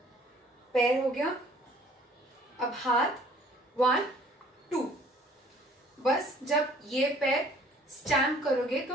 पैर हो गया। अब हाथ 1 2। बस जब ये पैर स्टैम्प करोगे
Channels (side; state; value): both; normal; correlation 0.55